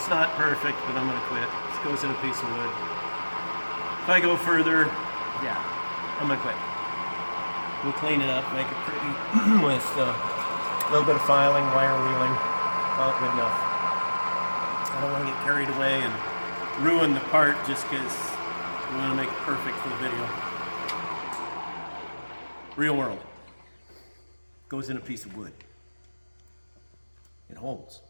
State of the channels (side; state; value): both; inverted; correlation -1.00